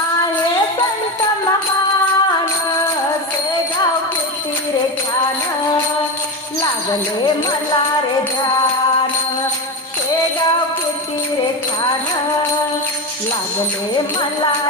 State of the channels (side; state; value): both; normal; correlation 0.19